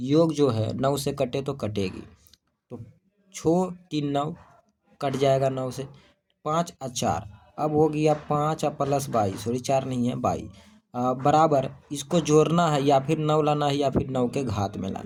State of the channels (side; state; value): both; identical; correlation 1.00